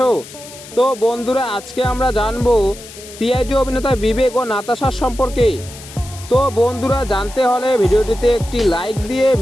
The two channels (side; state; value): left; noise; hiss, 16 dB below the sound